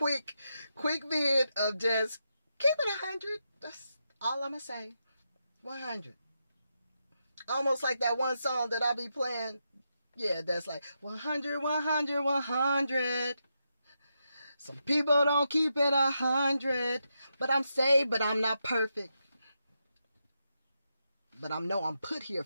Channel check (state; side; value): inverted; both; correlation -0.85